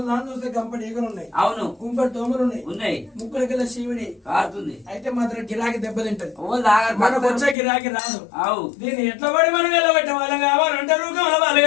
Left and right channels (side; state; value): right; drops out; at 7.6 s